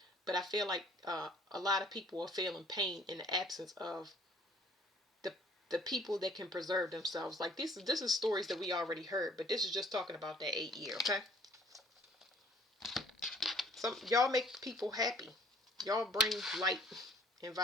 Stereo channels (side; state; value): both; normal; correlation 0.57